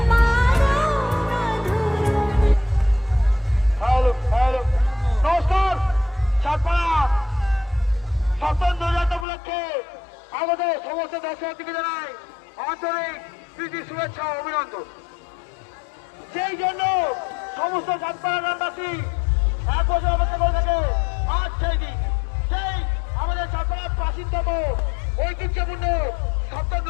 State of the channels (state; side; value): drops out; right; at 9.2 s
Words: নমস্কার, সাতপাড়া স্বতন্ত্র উপলক্ষে আমাদের সমস্ত দর্শকদেরকে জানাই আন্তরিক প্রীতি, শুভেচ্ছা ও অভিনন্দন। সেই জন্য সমস্ত সাতপাড়া গ্রামবাসী এক বছর অপেক্ষা করে থাকে আজ সেই দিন, সেই আমাদের সাতপাড়ার প্রাচীনতম ঐতিহ্যপূর্ণ